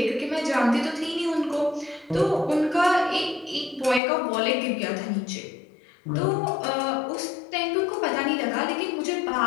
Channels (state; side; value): drops out; right; at 4.0 s